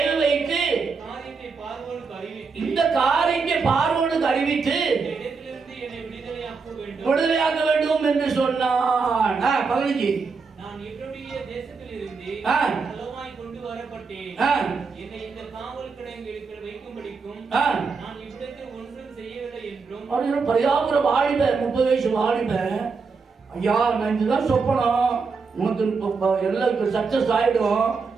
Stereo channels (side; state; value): left; quieter; 4.9 dB